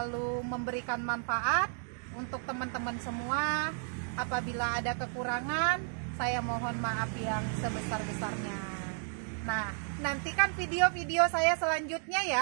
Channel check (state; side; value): silent; left; 56 dB below the other